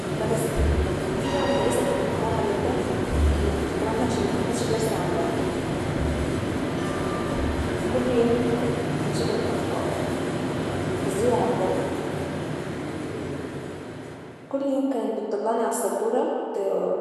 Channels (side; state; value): both; identical; correlation 1.00